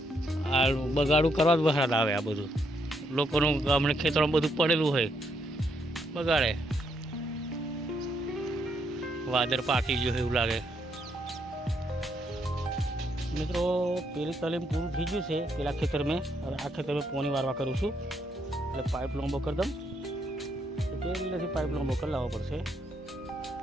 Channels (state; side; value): normal; both; correlation 0.75